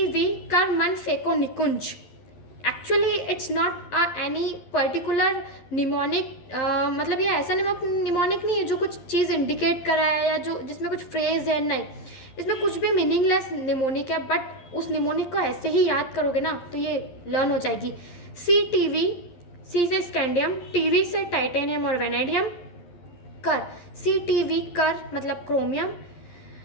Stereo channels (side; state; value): right; late; 11 ms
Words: कर मन phaco Nikunj, actually it's not any particular mnemonic, मतलब ये ऐसा निमोनिक नहीं है जो कुछ चीज़ इंडिकेट कर रहा है या जो जिसमें कुछ फ्रेज है, नहीं, इसमें कुछ भी मीनिंगलेस निमोनिक है, बट उस निमोनिक को ऐसे ही याद करोगे ना तो ये लर्न हो जाएगी। CTV, सी से स्कैंडियम, TV से टाइटेनियम और वेनेडियम, कर CTV कर मतलब क्रोमियम,